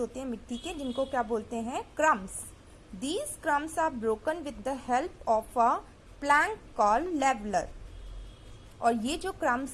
हैं मिट्टी के, जिनको क्या बोलते हैं? Crumbs. These crumbs are broken with the help of a plank called leveler. और ये जो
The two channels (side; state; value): both; identical; correlation 1.00